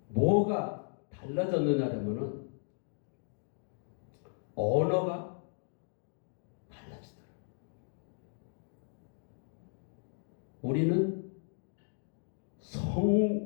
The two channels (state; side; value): silent; right; digital silence